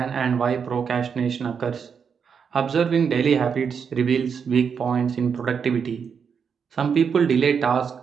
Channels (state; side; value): quieter; left; 6.6 dB